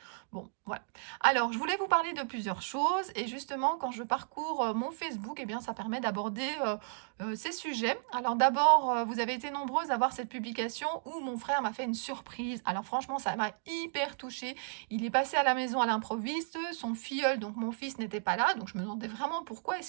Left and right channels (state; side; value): silent; left; digital silence